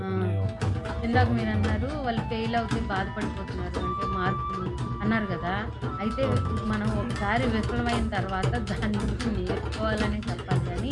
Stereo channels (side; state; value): both; identical; correlation 1.00